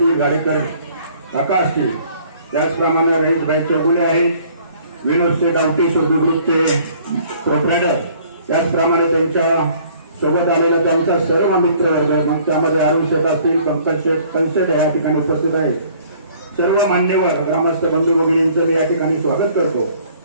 गाडेकर काका असतील, त्याचप्रमाणे रईसभाई चौगुले आहेत, विनोद शेटावटी सुरभि ग्रुपचे प्रोप्रायटर, त्याचप्रमाणे त्यांच्या सोबत आलेला त्यांचा सर्व मित्रवर्ग, मग त्यामध्ये अरुण शेठ असतील, पंकज शेठ पंचेत या ठिकाणी उपस्थित आहेत. सर्व मान्यवर ग्रामस्थ बंधू भगिनींचं मी या ठिकाणी स्वागत करतो.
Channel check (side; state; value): both; inverted; correlation -0.57